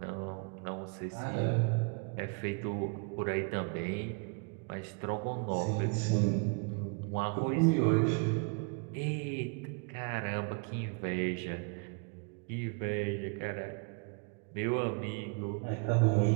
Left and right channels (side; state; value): left; quieter; 35.9 dB